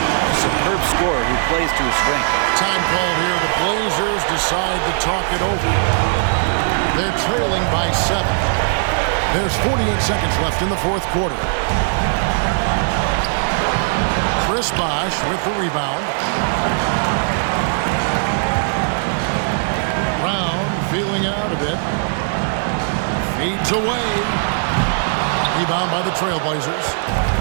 superb scorer who plays to his strength. Time called here. The Blazers decide to talk it over. They're trailing by 7. There's 48 seconds left in the fourth quarter. Chris Bosh with the rebound. Brown feeling it out a bit. Fades away. Rebound by the Trailblazers.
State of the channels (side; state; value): left; silent; 67 dB below the other